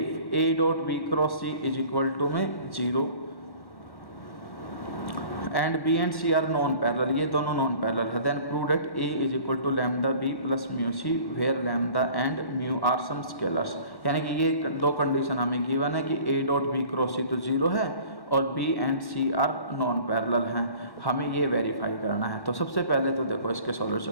A dot B cross C is equal to में 0 and B and C are non parallel, ये दोनों नॉन पैरेलल है, then prove that A is equal to lambda B plus mu C where lambda and mu are some scalars. यानी कि ये दो कंडीशन हमें गिवन है कि A dot B cross C तो 0 है और B and C are non parallel हैं, हमें ये वेरीफाई करना है। तो सबसे पहले तो देखो इसके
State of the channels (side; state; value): right; late; 1.1 ms